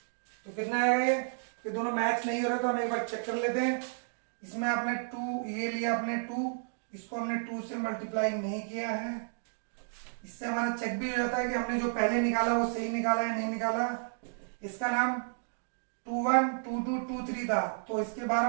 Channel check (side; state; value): left; silent; digital silence